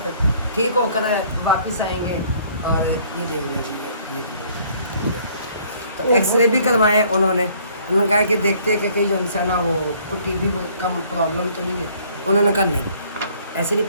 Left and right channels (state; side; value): inverted; both; correlation -0.60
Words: ठीक होकर वापस आएंगे। और ये देख लीजिए ये तो एक्सरे भी करवाए उन्होंने कहा कि देखते हैं कि कहीं जो है ना वो कोई टीबी का प्रॉब्लम तो नहीं है। उन्होंने कहा नहीं ऐसे नहीं